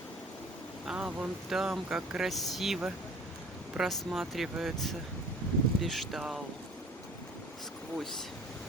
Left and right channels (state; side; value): normal; both; correlation 0.48